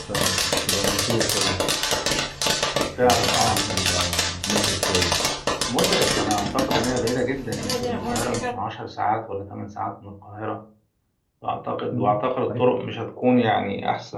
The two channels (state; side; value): identical; both; correlation 1.00